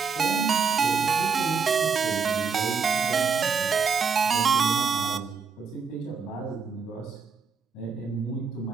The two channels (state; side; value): quieter; left; 5.6 dB